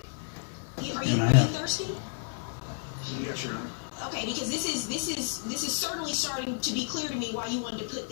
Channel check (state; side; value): silent; right; digital silence